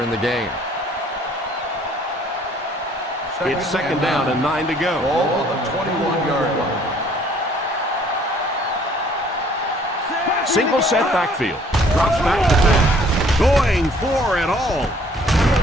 in the game. It's second down and 9 to go. Ball on the 21-yard line. Single set backfield. Drops back to 10. Going for it all.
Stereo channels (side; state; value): both; normal; correlation 0.59